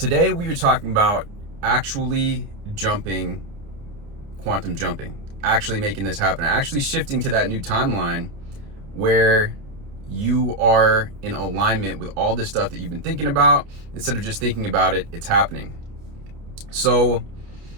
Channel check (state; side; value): late; left; 29 ms